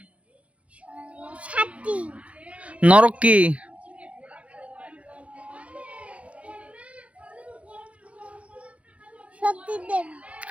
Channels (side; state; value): left; late; 0.063 ms